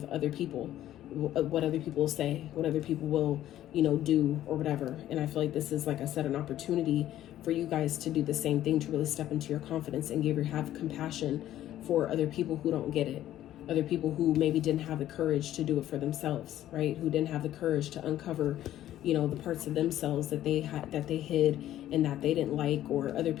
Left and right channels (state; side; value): quieter; right; 12.8 dB